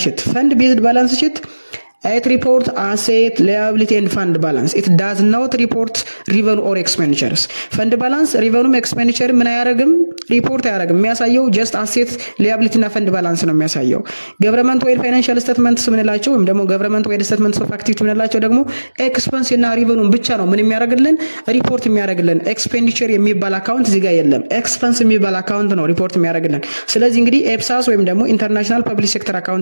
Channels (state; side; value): inverted; both; correlation -1.00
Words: ሺት? ፈንድ ቤዝድ ባላንስ ሺት it report asset liability and fund balance. It does not report revenue or expenditures. fund balance revenue expenditure ምን አያደርግም ሪፖርት አያደርግም። የሚያሳየው just asset liability እና fund balance ነው የሚያሳየው። government wide financial statements ምንላቸው ወይም ደግሞ government wide statements of activity ምንላቸው ደግሞ expense እና revenue ብቻ ነው ምን የሚያደርግልን ሪፖርት የሚያደርግልን። expenditure የሚባል አካውንት እዚህ ጋር የለም። expense የሚባል አካውንት ነው ሪፖርት የሚያደርግልን። ስለዚህ እንግዲህ ኤፕሳስ ወይም ደግሞ ኢንተርናሽናል ፐብሊክ ሴክተር